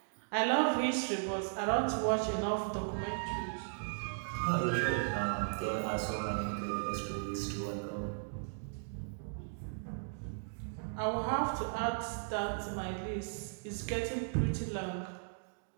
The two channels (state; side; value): silent; left; digital silence